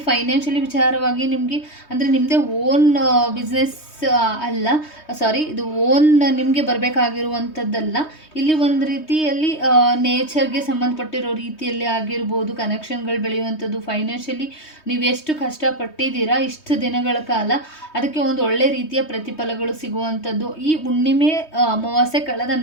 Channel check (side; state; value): right; late; 3.2 ms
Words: ಫೈನಾನ್ಷಿಯಲಿ ವಿಚಾರವಾಗಿ ನಿಮಗೆ ಅಂದರೆ ನಿಮ್ಮದೇ ಓನ್ ಬಿಸ್ನೆಸ್ ಅಲ್ಲ, ಸಾರಿ, ಇದು ಓನ್ ನಿಮಗೆ ಬರಬೇಕಾಗಿರುವಂಥದ್ದಲ್ಲ. ಇಲ್ಲಿ ಒಂದು ರೀತಿಯಲ್ಲಿ ನೇಚರ್ಗೆ ಸಂಬಂಧಪಟ್ಟಿರೋ ರೀತಿಯಲ್ಲಿ ಆಗಿರ್ಬೋದು ಕನೆಕ್ಷನ್ಗಳು ಬೆಳೆಯುವಂಥದ್ದು. ಫೈನಾನ್ಷಿಯಲಿ ನೀವು ಎಷ್ಟು ಕಷ್ಟಪಟ್ಟಿದ್ದೀರಾ ಇಷ್ಟು ದಿನಗಳ ಕಾಲ, ಅದಕ್ಕೆ ಒಂದು ಒಳ್ಳೆ ರೀತಿಯ ಪ್ರತಿಫಲಗಳು ಸಿಗುವಂಥದ್ದು. ಈ ಹುಣ್ಣಿಮೆ ಅಮಾವಾಸ್ಯೆ ಕಳೆದ